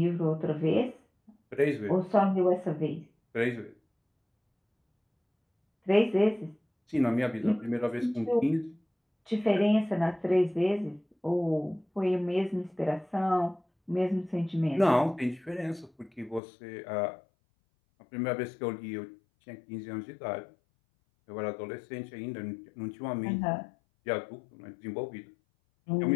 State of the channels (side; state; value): right; drops out; at 16.4 s